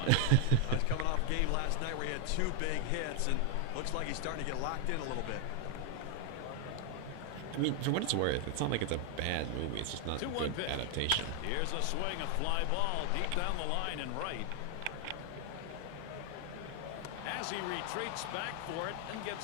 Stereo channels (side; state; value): both; different; correlation 0.00